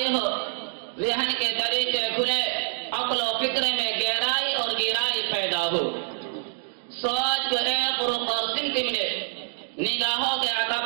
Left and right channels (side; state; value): left; silent; digital silence